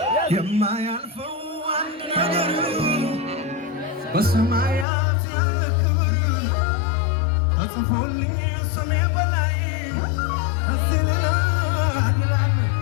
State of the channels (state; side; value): drops out; right; at 4.9 s